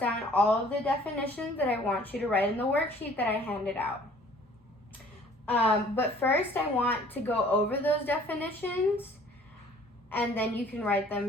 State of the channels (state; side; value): normal; both; correlation 0.54